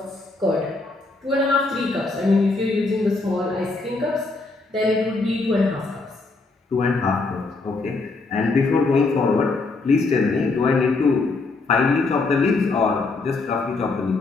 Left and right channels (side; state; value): right; quieter; 3.6 dB